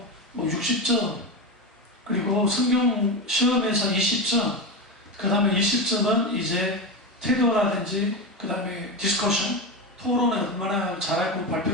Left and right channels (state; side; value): normal; both; correlation 0.18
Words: 뭐 60점, 그리고 성경 시험에서 20점, 그 다음에 20점은 이제 태도라든지, 그 다음에 디스커션, 토론을 얼마나 잘했고